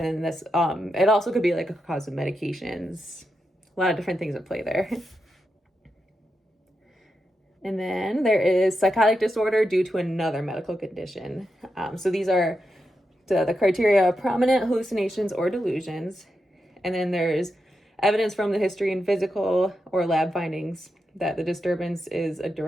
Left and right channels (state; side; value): normal; both; correlation 0.87